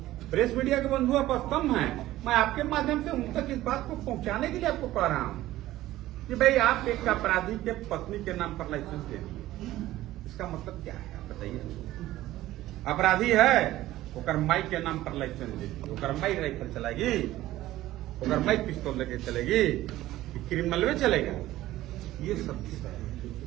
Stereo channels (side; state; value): left; quieter; 15.5 dB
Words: प्रेस मीडिया के बंधु आप स्तंभ हैं, मैं आपके माध्यम से उन तक इस बात को पहुंचाने के लिए आपको कह रहा हूं कि भाई आप एक अपराधी के पत्नी के नाम पर लाइसेंस दे दिए, इसका मतलब क्या है आप बताइए? अपराधी है, ओकर माई के नाम पर लाइसेंस दे दी, ओकर माई राइफल चलाएगी, ओकर माई पिस्तौल लेके चलेगी, कि क्रिमिनल में चलेगा, ये सब विषय है।